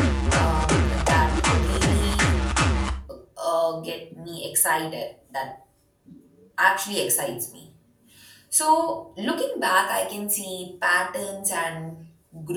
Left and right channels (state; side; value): identical; both; correlation 1.00